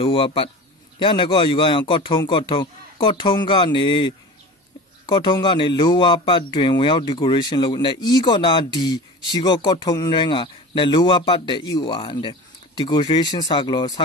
ပတ်ရနကောယူကရကော့ထုံးကနေ lower ပတ်တွင်ဝင်ရောက် decoration လုပ်နဲ့ E ကောနာ D ရှိကောကော့ထုံးရန်ကနဲ့ lower ပတ်တဲ့ E ဝါတဲ့ decoration စာကလောက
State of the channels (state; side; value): normal; both; correlation 0.35